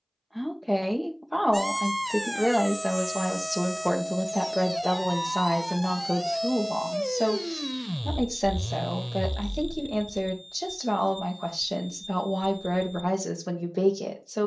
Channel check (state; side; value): identical; both; correlation 1.00